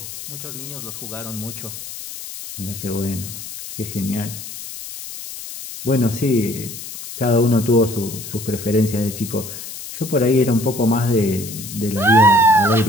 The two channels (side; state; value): left; noise; hiss, 11 dB below the sound